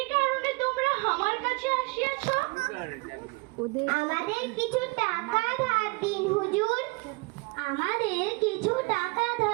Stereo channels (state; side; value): quieter; left; 27.5 dB